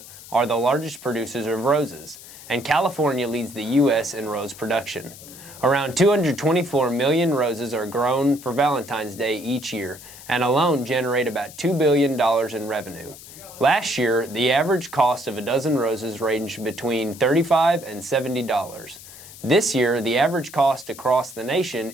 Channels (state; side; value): noise; left; hiss, 17 dB below the sound